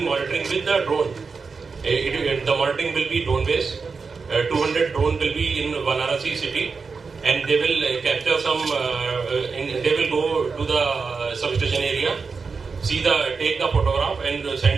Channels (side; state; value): left; quieter; 4.9 dB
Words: monitoring with the drone. The monitoring will be drone based. 200 drone will be in Varanasi city, and they will capture some. They will go to the substation area, take the photograph, and